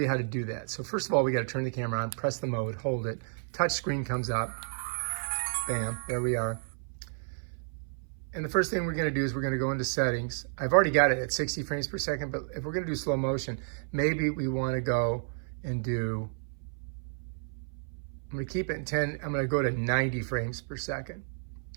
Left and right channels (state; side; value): silent; left; 57 dB below the other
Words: how to do that. So first of all, we got to turn the camera on, press the mode, hold it. Touch screen comes up. Bam, there we are. And the first thing we're going to do is we're going to go into settings. I've already got it at 60 frames per second, but if we're going to do slow motion, maybe we want to go and do, I'm going to keep it in 10, I'm going to go to 90 frames per second,